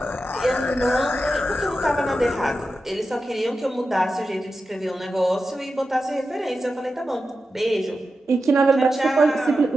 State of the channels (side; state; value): both; normal; correlation 0.91